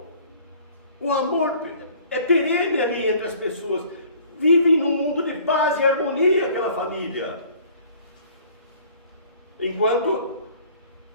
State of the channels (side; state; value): both; inverted; correlation -0.52